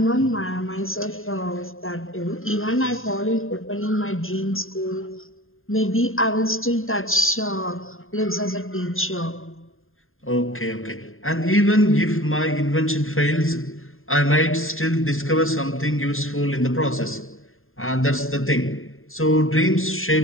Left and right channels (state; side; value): late; right; 0.60 ms